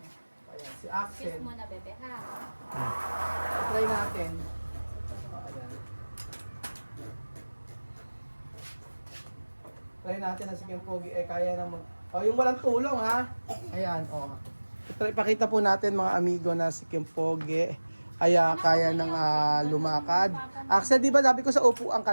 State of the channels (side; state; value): both; inverted; correlation -1.00